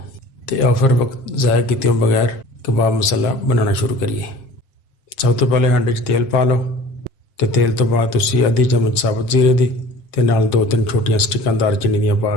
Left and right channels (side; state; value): right; late; 7.5 ms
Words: तो आओ फिर वक्त ज़ाया किए बगैर कबाब मसाला बनाना शुरू करिए। सब तो पहले हांडे च तेल पा लो तो तेल तो बाद तुसी आधी चम्मच साबुत जीरे दी ते नाल 2-3 छोटियां स्टिकां दालचीनी दियां पा